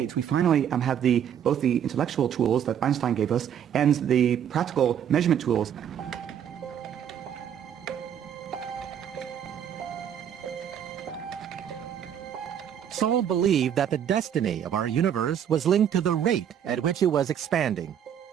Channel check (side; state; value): left; quieter; 9.2 dB